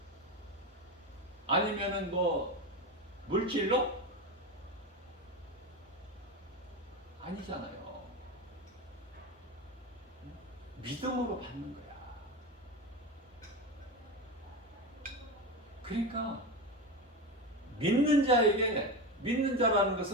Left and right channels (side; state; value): both; normal; correlation 0.19